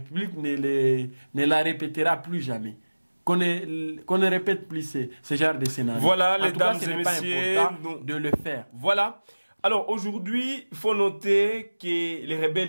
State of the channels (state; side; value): inverted; both; correlation -1.00